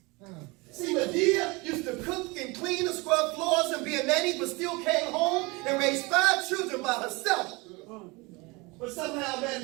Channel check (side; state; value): left; quieter; 25.7 dB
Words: See, Medea used to cook and clean and scrub floors and be a nanny, but still came home and raised 5 children by herself. But somehow